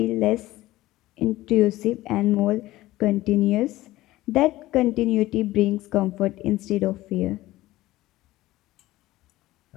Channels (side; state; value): right; quieter; 17.0 dB